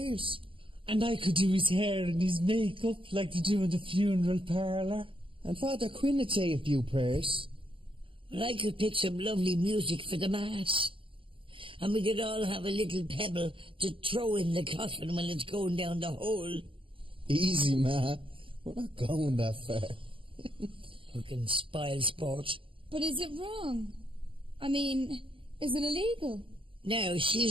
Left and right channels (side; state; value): left; late; 0.25 ms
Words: And I could do his hair and his makeup like they do in the funeral parlour. And Father Quinn would say a few prayers. Well, I could pick some lovely music for the Mass. And we could all have a little pebble to throw in the coffin when it's going down the hole. Easy, Ma. We're not going that far. Fucking spoil sport. But is it wrong? I mean, is it illegal? No,